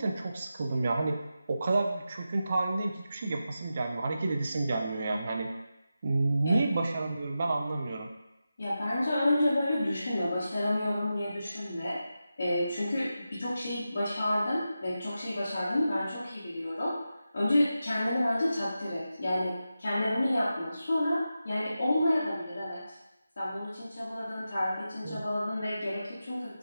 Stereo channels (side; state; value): both; inverted; correlation -0.91